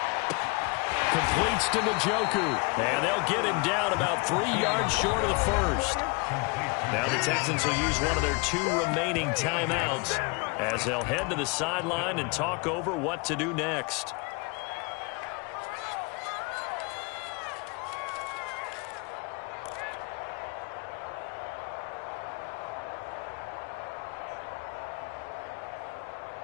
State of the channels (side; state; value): right; quieter; 29.9 dB